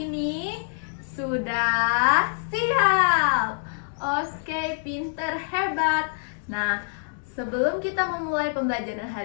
ini? Sudah siap. Oke, pinter, hebat. Nah, sebelum kita memulai pembelajaran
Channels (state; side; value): silent; right; digital silence